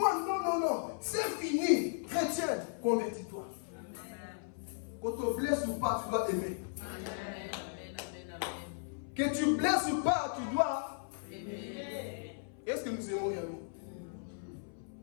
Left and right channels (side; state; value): right; silent; 54 dB below the other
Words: non. C'est fini. Chrétien, convertis-toi. Qu'on te blesse ou pas, tu dois aimer. Que tu blesses ou pas, tu dois aimer. Est-ce que nous aimons réellement?